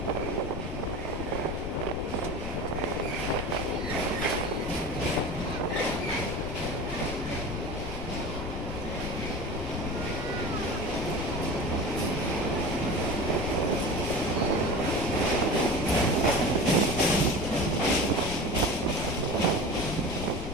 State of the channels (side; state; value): left; noise; rumble, 7 dB below the sound